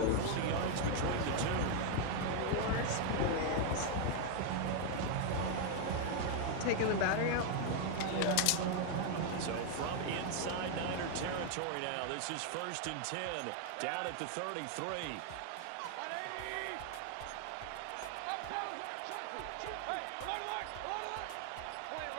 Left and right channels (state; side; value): different; both; correlation 0.00